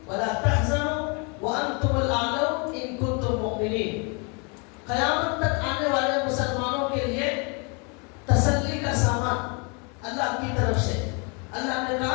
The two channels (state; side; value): quieter; right; 33.7 dB